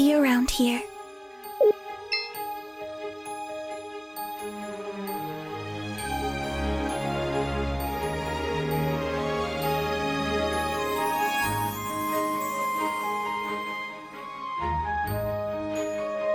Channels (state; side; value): identical; both; correlation 1.00